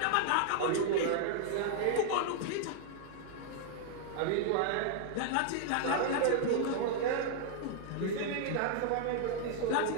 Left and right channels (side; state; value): both; different; correlation -0.01